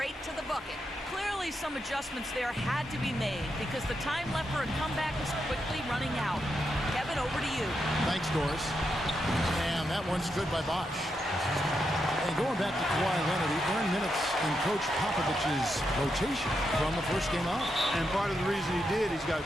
to the bucket. Clearly, some adjustments there had to be made because the time left for a comeback is quickly running out. Kevin, over to you. Thanks, Doris. And that one's good by Bosch. And going back to Kawhi Leonard, he earned minutes in Coach Popovich's rotation from the first game out. And part of the reason he did, he's got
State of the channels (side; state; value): both; normal; correlation 0.84